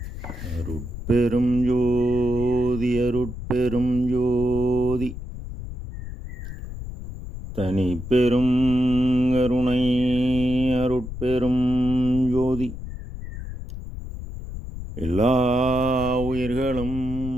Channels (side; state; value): left; noise; rumble, 9 dB below the sound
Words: அருட்பெரும் ஜோதி அருட்பெரும் ஜோதி தனி பெரும் கருணை அருட்பெரும் ஜோதி எல்லா உயிர்களும்